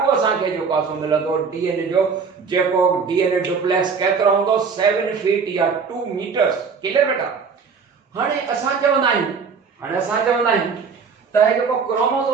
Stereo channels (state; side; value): quieter; left; 5.5 dB